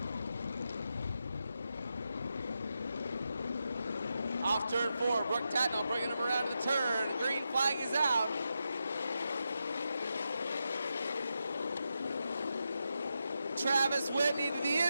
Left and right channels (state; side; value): inverted; both; correlation -0.87